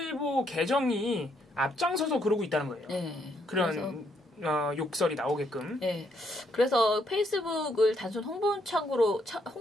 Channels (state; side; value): normal; both; correlation 0.74